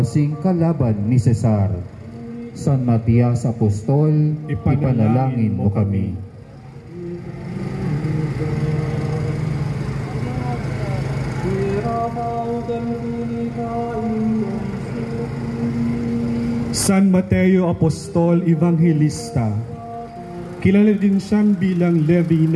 kalaban ni Cesar. San Matias Apostol, ipanalangin mo kami. San Mateo Apostol Evangelista, kilala din siyang bilang Levi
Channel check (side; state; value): both; identical; correlation 1.00